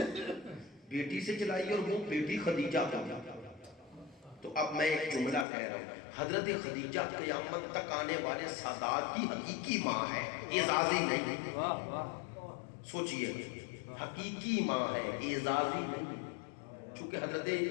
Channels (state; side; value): drops out; right; at 5.5 s